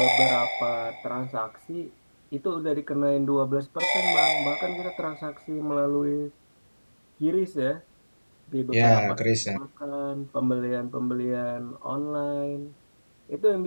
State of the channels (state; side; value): inverted; both; correlation -1.00